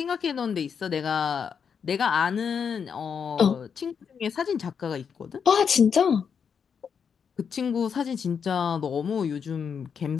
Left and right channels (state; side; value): quieter; right; 6.8 dB